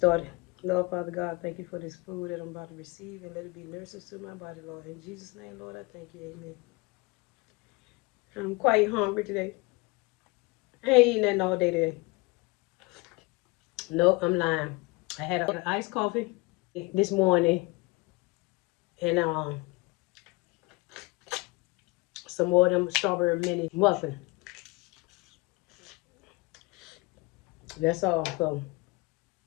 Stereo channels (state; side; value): quieter; right; 25.3 dB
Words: Lord, Father God, thank you for this food that I'm about to receive and let it be nurses to my body, Lord. In Jesus' name, Lord, I thank you. Amen. I'm quite hungry today. I ain't eating nothing all day today. Nope, I'm lying. I had an iced coffee this morning and some more of them strawberry mini muffin. That's all. So